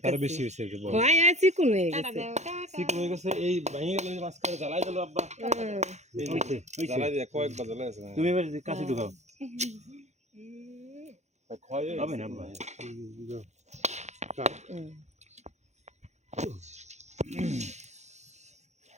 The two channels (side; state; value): left; late; 0.33 ms